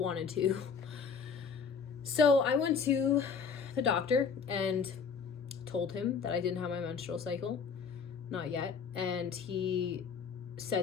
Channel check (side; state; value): right; quieter; 5.9 dB